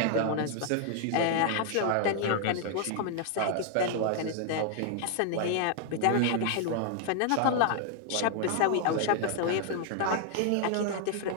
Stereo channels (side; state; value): both; different; correlation 0.00